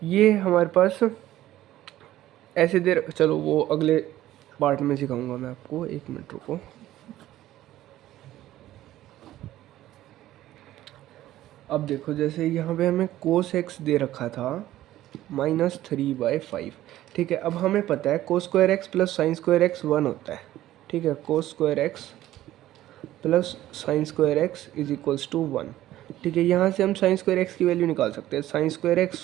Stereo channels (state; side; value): quieter; left; 14.2 dB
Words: ये हमारे पास ऐसे देर, चलो वो अगले पार्ट में सिखाऊंगा मैं आपको, 1 मिनट रुको। अब देखो, जैसे यहाँ पे हमें कोस एक्स दे रखा था -3/5। ठीक है, अब हमें पता है cos square x plus sine square x 1 होता है। ठीक है, cos square x plus sine square x is equals to 1। ठीक है, यहाँ से हम साइन स्क्वायर एक्स की वैल्यू निकाल सकते हैं। Sine square